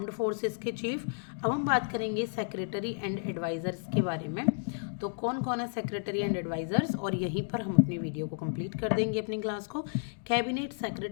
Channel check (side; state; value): right; silent; digital silence